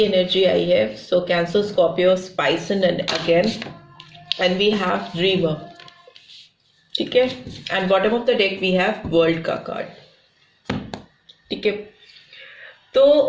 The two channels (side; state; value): both; identical; correlation 1.00